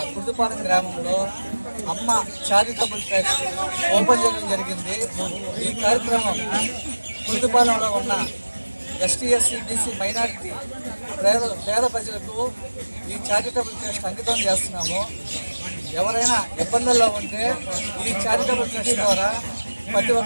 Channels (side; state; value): both; inverted; correlation -1.00